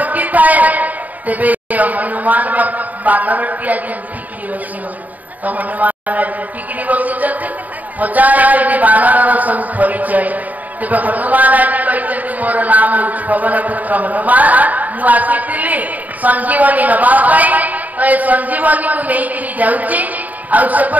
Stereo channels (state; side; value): late; left; 0.076 ms